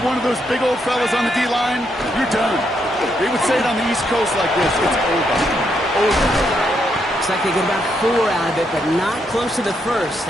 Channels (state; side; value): normal; both; correlation 0.78